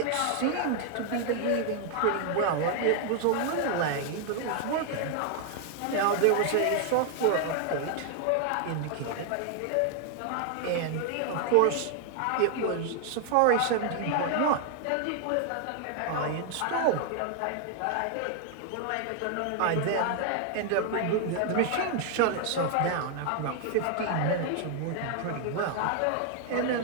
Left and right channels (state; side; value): different; both; correlation 0.00